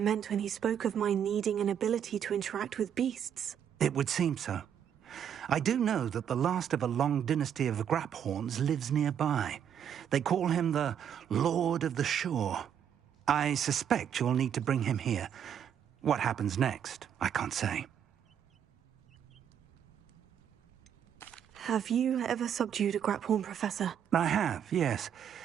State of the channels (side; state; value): left; quieter; 8.9 dB